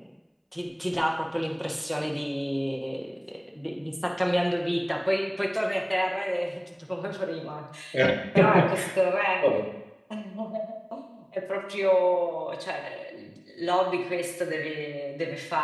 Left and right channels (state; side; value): identical; both; correlation 1.00